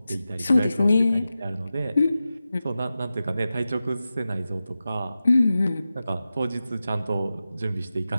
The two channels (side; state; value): both; inverted; correlation -0.93